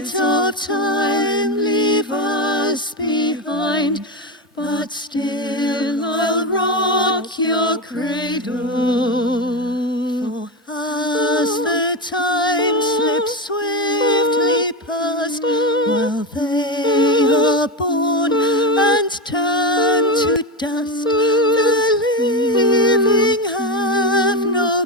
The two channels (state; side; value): normal; both; correlation 0.14